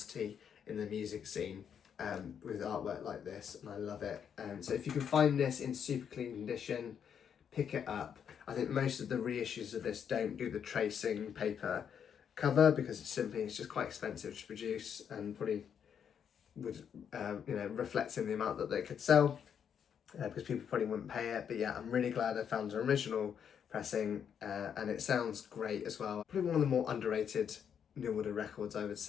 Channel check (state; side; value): quieter; right; 7.9 dB